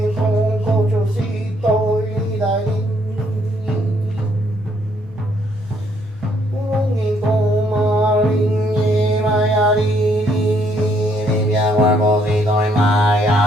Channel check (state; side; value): normal; both; correlation 0.69